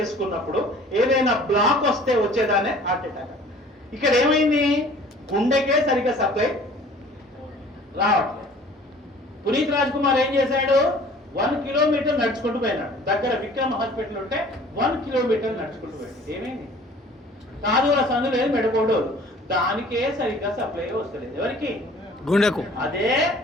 ఏదైనా బ్లాక్ వస్తే వచ్చేదానే హార్ట్ అటాక్. ఇక్కడ ఏమైంది? గుండెకే సరిగ్గా సప్లై రావట్లేదు. పునీత్ రాజ్ కుమార్ ఏం చేశాడు? 1 కిలోమీటర్ నడుచుకుంటూ పోయినాడు. దగ్గర విక్రమ్ హాస్పిటల్ ఉంటే 1 కిలోమీటర్ నడుచుకుంటూ పోయాడు. ఏమైంది? కాదుల సందు లేదు, మెడకోడు, దానికే సరిగ్గా సప్లై వస్తలేదు. ఎవరికి? గుండెకు. అదే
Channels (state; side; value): normal; both; correlation 0.49